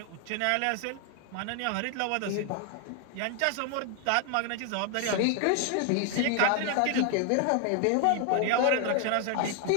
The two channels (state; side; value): different; both; correlation 0.01